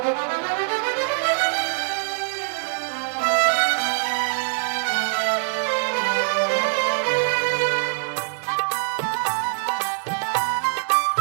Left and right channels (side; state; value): left; silent; 63 dB below the other